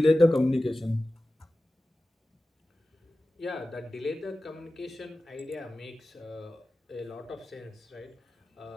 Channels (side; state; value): both; normal; correlation 0.95